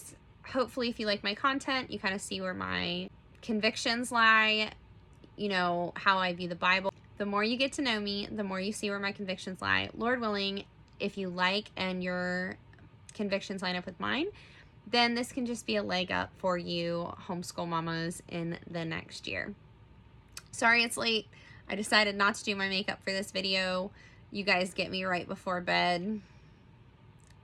Hopefully, if you like my content, you kind of see where my convictions lie, you know, how I view the Bible. The more you get to know me, the more you see where my convictions lie. Lord willing, if you like and your convictions line up with mine, then this can just be a leg up for you homeschool mamas in the next year. Sorry it's late. I decided not to do my makeup for this video. You guys get me right before bed.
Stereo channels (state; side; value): identical; both; correlation 1.00